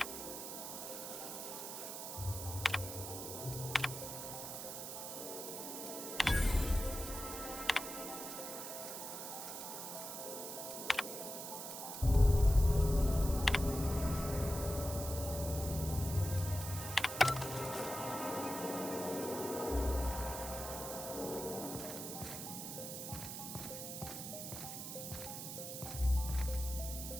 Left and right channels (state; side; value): noise; right; hiss, 7 dB below the sound